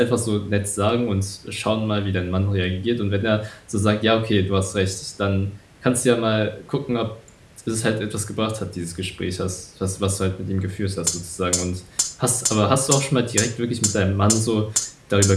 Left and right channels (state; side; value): identical; both; correlation 1.00